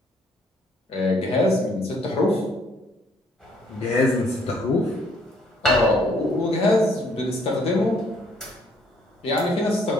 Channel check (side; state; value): both; normal; correlation 0.65